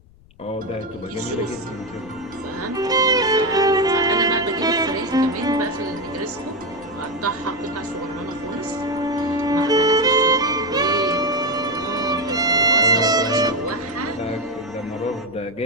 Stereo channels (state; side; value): noise; left; rumble, 26 dB below the sound